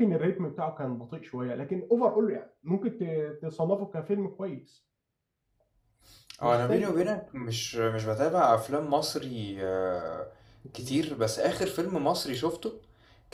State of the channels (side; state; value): both; identical; correlation 1.00